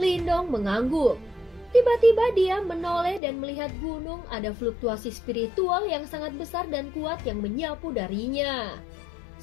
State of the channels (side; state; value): right; drops out; at 3.2 s